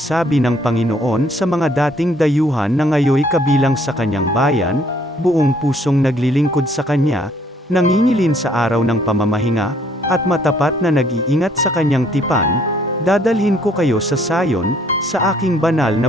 ng Panginoon sa mga dating dayuhan na ngayoy kabilang sa kanyang bayan, buong pusong naglilingkod sa kanya, nangingilin sa araw ng pamamahinga, at matapat na nag-iingat sa kanyang tipan, dadalhin ko kayo sa Sayon, sa aking banal na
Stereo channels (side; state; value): both; normal; correlation 0.63